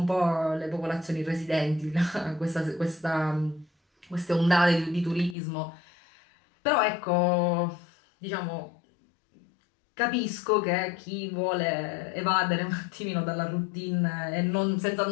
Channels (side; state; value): right; drops out; at 5.4 s